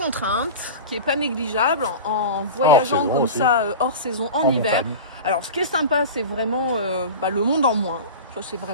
qui est pas négligeable en voyageant saison comme aussi. ça hors saison en hiver. montagne. Alors ce qui est sympa, c'est vraiment le monde en moins. Ça c'est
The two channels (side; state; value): both; inverted; correlation -0.30